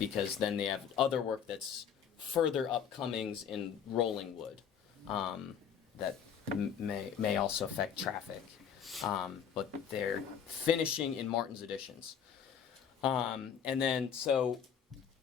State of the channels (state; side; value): quieter; right; 7.8 dB